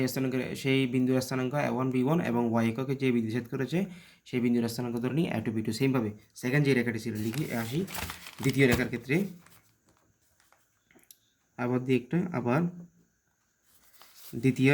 সেই বিন্দুর স্থানাঙ্ক a1 b1, এবং ওয়াই এককে যে বিন্দু ছেদ করেছে সেই বিন্দুর স্থানাঙ্ক ধরে নিই a2 b2। সেমভাবে সেকেন্ড যে রেখাটি ছিল লিখি, আসি দ্বিতীয় রেখার ক্ষেত্রে, আবার দ্বিতীয়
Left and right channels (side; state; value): both; identical; correlation 1.00